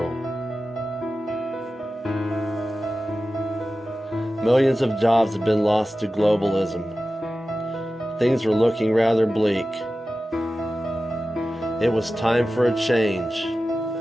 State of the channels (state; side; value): normal; both; correlation 0.94